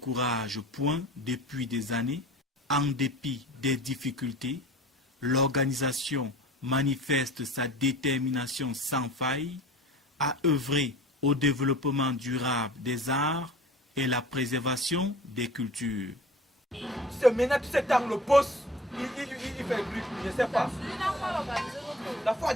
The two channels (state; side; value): normal; both; correlation 0.41